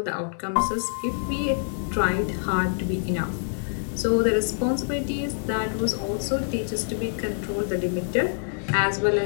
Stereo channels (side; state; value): right; silent; 61 dB below the other